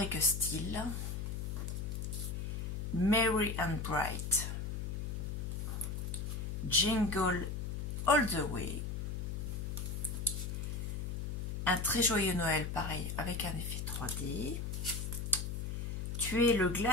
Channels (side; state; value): left; noise; hum, 3 dB below the sound